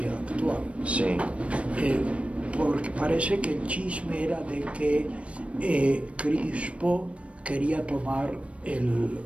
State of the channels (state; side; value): late; left; 0.062 ms